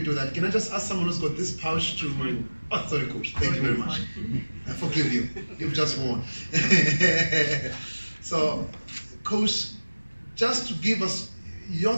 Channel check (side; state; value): both; inverted; correlation -1.00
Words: do that, can I just ask someone who's got this pouch to... Oh, sorry, Coach. Thank you very much. I forgive you. You've just won. So, Coach, just to give us your